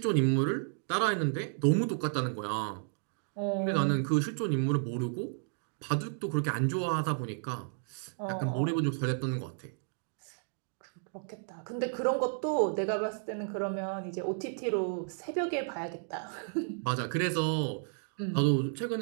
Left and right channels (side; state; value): left; silent; digital silence